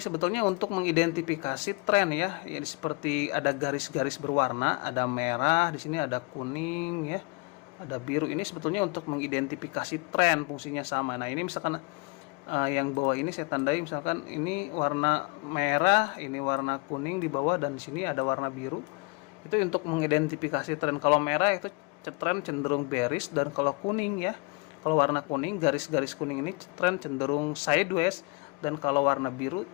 untuk mengidentifikasi tren ya. Ya, seperti ada garis-garis berwarna, ada merah, di sini ada kuning ya, ada biru. Ini sebetulnya untuk mengidentifikasi tren, fungsinya sama. Nah, ini misalkan yang bawah ini saya tandai, misalkan ini warna merah, ini warna kuning di bawah, dan di sini ada warna biru. Itu untuk mengidentifikasi tren. Kalau merah itu tren cenderung bearish, dan kalau kuning ya, kalau warna kuning, garis-garis kuning ini tren cenderung sideways, dan kalau warna biru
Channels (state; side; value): quieter; right; 29.6 dB